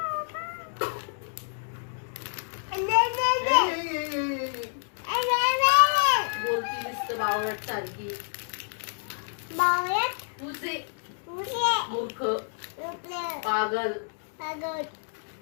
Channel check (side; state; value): right; silent; digital silence